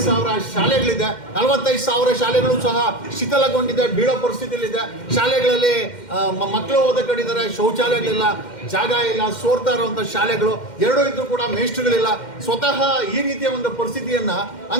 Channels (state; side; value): late; right; 2.1 ms